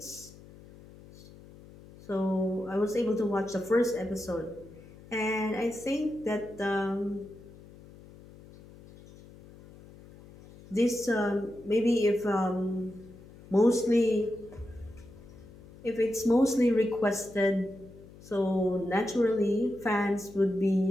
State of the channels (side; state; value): left; noise; hum, 20 dB below the sound